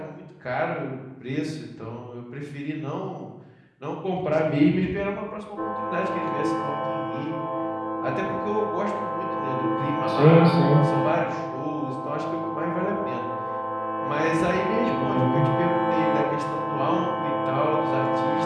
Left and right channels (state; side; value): identical; both; correlation 1.00